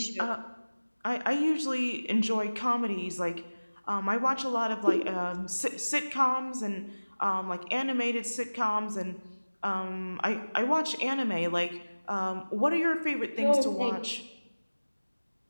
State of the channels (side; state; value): both; inverted; correlation -1.00